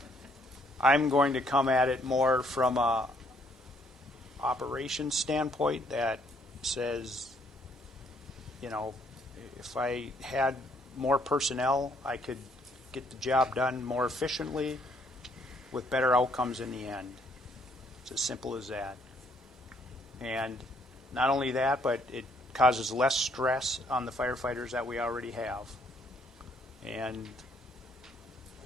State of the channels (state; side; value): normal; both; correlation 0.68